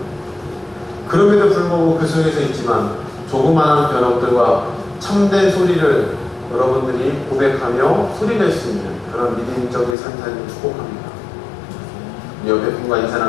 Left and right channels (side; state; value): right; drops out; at 10.0 s